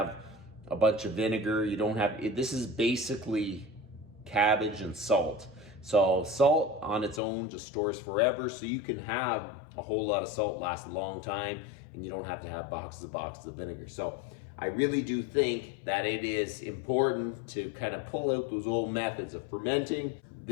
a bunch of vinegar. You don't have, this is basically cabbage and salt. So salt on its own just stores forever, so you can have a whole lot of salt last a long time, and you don't have to have boxes of vinegar. So I really do think that it is important to kind of pull out those old methods of fermenting.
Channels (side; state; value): right; drops out; at 7.2 s